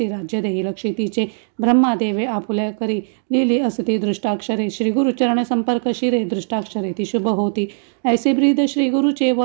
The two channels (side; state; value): left; silent; digital silence